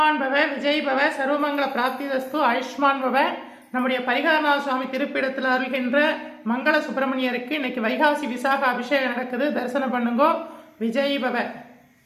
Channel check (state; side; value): identical; both; correlation 1.00